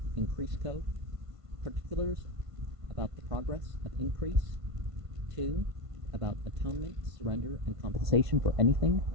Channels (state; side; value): late; left; 1.5 ms